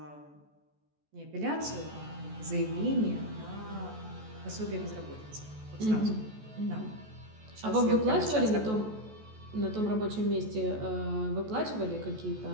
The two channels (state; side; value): late; left; 14 ms